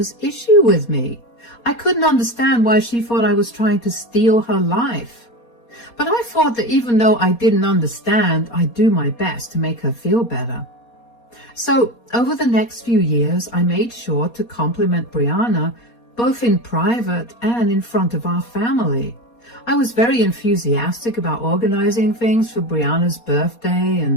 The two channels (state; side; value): late; right; 4.2 ms